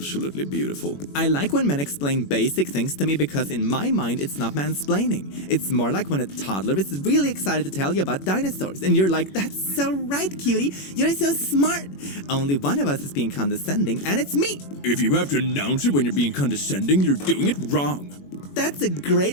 beautiful. I like when men explain basic things to me because in my mind it's not mansplaining. It's more like when a toddler is really excited to tell you about dinosaurs and you're like, that's so right, cutie. You're so smart. Only one of us is being condescending and it's me. If you have to announce it when you're being condescending, you're doing it wrong. That's a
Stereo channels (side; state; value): right; late; 21 ms